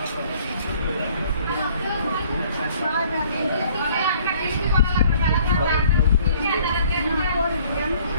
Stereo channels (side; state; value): both; inverted; correlation -0.58